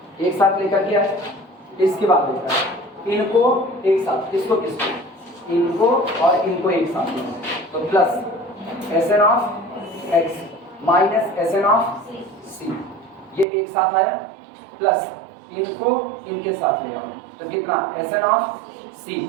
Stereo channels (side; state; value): left; drops out; at 13.5 s